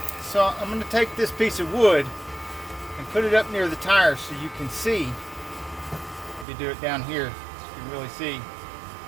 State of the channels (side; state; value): left; drops out; at 6.5 s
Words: so I'm going to take this piece of wood and put it up near the tire so you can see. If you do it down here, you can really see.